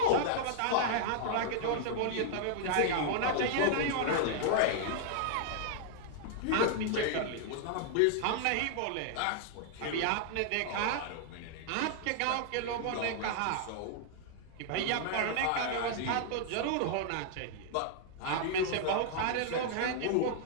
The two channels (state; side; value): different; both; correlation -0.01